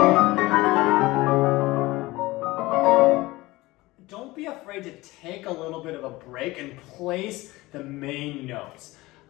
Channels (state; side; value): quieter; right; 20.0 dB